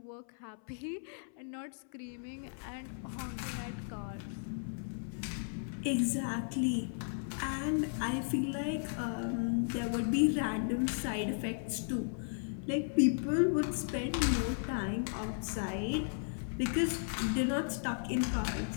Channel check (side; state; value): right; silent; 54 dB below the other